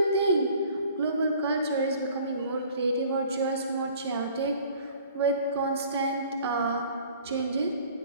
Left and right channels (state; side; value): inverted; both; correlation -0.52